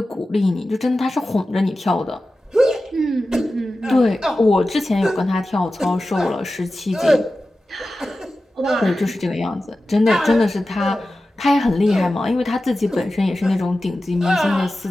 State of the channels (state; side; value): normal; both; correlation 0.94